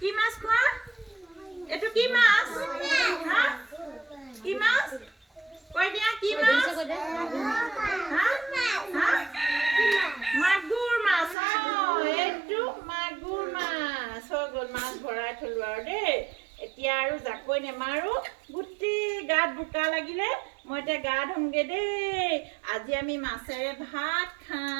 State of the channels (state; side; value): drops out; left; at 11.4 s